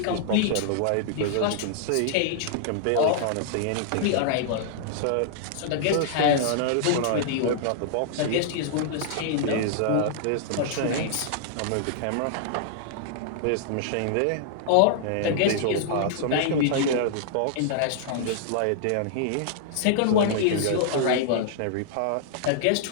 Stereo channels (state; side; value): different; both; correlation -0.01